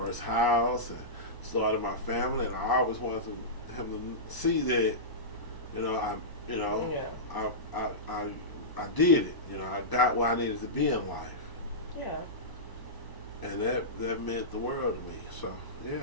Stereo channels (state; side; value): late; right; 1.0 ms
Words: house and started my family, and I always wanted him to see that, you know, I did it. You know, I got where I needed to be in life. Yeah. And that meant the world to me. So